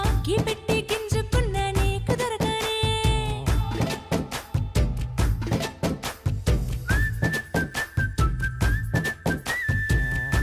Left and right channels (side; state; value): both; identical; correlation 1.00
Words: కి పెట్టి గింజుకున్న నీకు దొరకనే